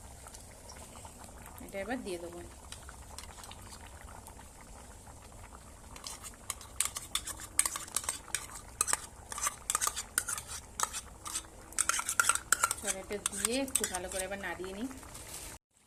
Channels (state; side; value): identical; both; correlation 1.00